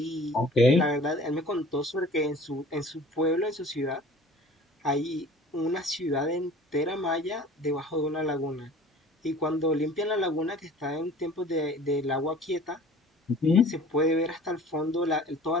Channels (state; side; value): normal; both; correlation 0.46